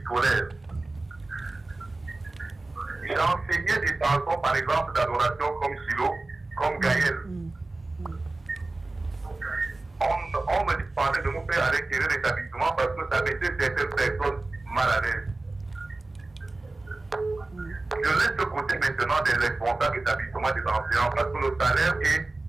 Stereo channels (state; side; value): quieter; left; 3.1 dB